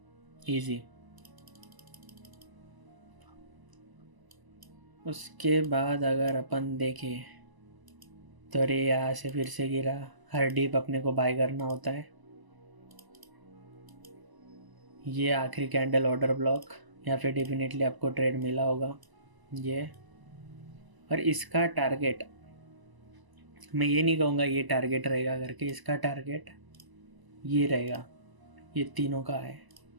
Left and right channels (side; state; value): left; late; 1.0 ms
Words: इजी। उसके बाद अगर अपन देखें तो अरे यहाँ से फिर से गिरा, हर डीप अपने को बाय करना होता है। ये आखिरी कैंडल ऑर्डर ब्लॉक, या फिर डेफिनेटली आपको ट्रेड मिला होगा ये। और इसका टारगेट, मैं ये नहीं कहूँगा ये टारगेट रहेगा करके, इसका टारगेट ये रहेगा, ये तीनों का है